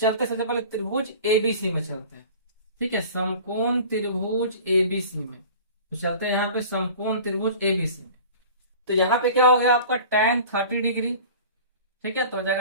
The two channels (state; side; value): inverted; both; correlation -0.41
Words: सबसे पहले त्रिभुज ABC में चलते हैं। ठीक है, समकोण त्रिभुज ABC में। तो चलते हैं यहाँ पे समकोण त्रिभुज ABC में। तो यहाँ पे क्या हो गया आपका tan 30 डिग्री। ठीक है, तो हो